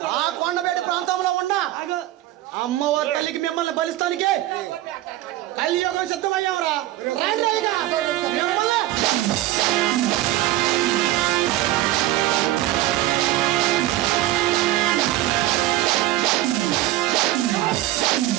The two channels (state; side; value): quieter; left; 15.2 dB